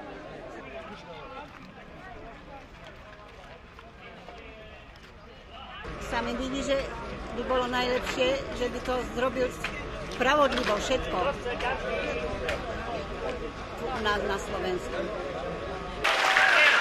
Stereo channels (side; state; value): both; identical; correlation 1.00